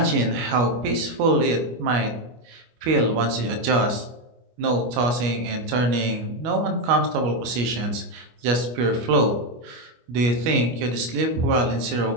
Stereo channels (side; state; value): left; late; 25 ms